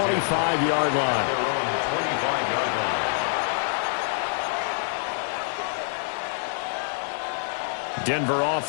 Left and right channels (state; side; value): silent; right; digital silence